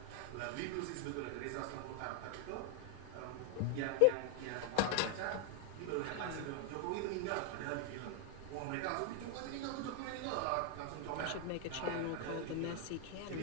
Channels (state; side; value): different; both; correlation 0.00